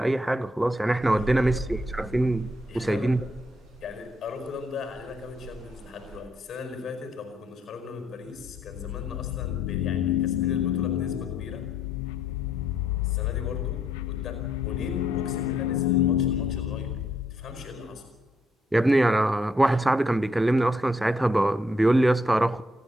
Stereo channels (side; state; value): both; normal; correlation 0.73